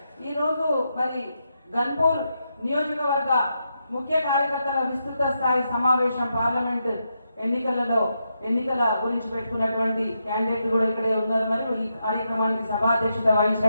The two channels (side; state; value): both; inverted; correlation -0.83